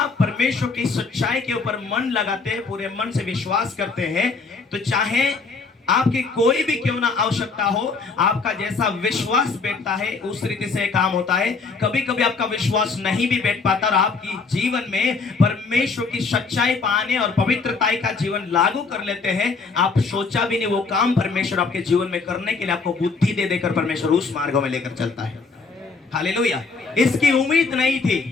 परमेश्वर की सच्चाई के ऊपर मन लगाते हैं, पूरे मन से विश्वास करते हैं, तो चाहे आपकी कोई भी क्यों ना आवश्यकता हो, आपका जैसा विश्वास बैठता है उस रीति से काम होता है। कभी कभी आपका विश्वास नहीं भी बैठ पाता और आपकी जीवन में परमेश्वर की सच्चाई पाने और पवित्रताई का जीवन लागू कर लेते हैं, आप सोचा भी नहीं वो काम परमेश्वर आपके जीवन में करने के लिए आपको बुद्धि दे देकर परमेश्वर उस मार्गों में लेकर चलता है। हालेलुया। इसकी उम्मीद नहीं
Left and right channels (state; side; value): quieter; right; 4.4 dB